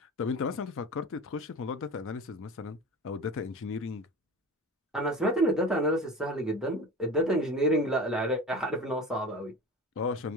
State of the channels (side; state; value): both; normal; correlation 0.32